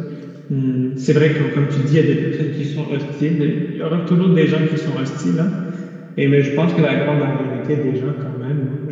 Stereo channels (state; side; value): identical; both; correlation 1.00